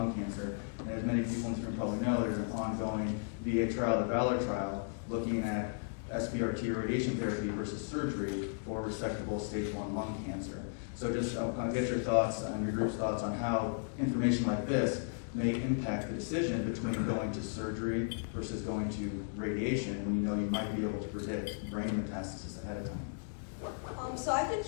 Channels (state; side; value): silent; right; digital silence